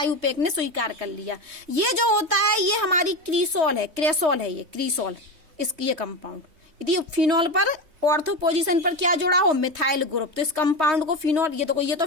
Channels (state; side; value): late; left; 3.2 ms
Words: ने स्वीकार कर लिया। ये जो होता है ये हमारी क्रीसॉल है, क्रेसॉल है, ये क्रीसॉल, इसकी ये कंपाउंड। यदि फिनॉल पर ऑर्थो पोजीशन पर क्या जुड़ा हो, मिथाइल ग्रुप, तो इस कंपाउंड को फिनॉल, ये तो